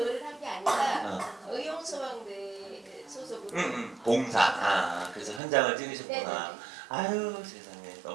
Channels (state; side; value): drops out; left; at 5.4 s